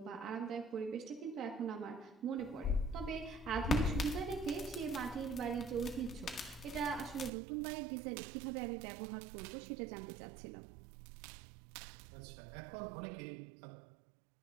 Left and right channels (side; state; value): left; drops out; at 7.3 s